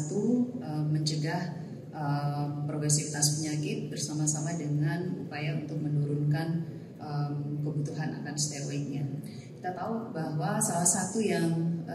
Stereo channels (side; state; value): both; identical; correlation 1.00